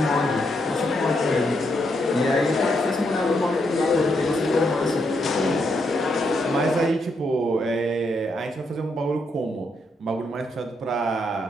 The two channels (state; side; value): normal; both; correlation 0.78